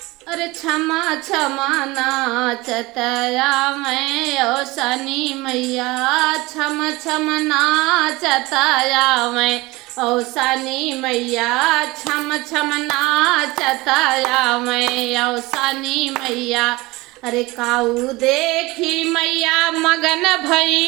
अरे क्षमा क्षमा नाचतया मैं औसानी मैया, क्षम क्षम नाचतया मैं औसानी मैया, क्षम क्षम नाचतया मैं औसानी मैया। अरे काऊ देखी मैया मगन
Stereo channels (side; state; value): left; quieter; 21.6 dB